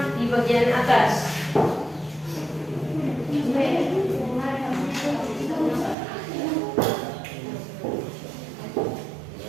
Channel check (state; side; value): drops out; left; at 6.0 s